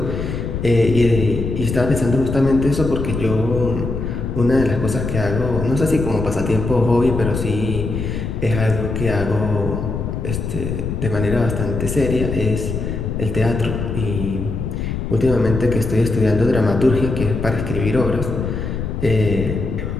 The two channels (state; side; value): noise; left; rumble, 4 dB below the sound